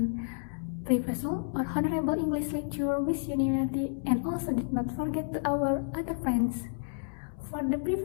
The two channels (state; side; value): silent; right; 57 dB below the other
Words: Professor or Honorable English lecturer with unanimity, and also did not forget to our other friends. For the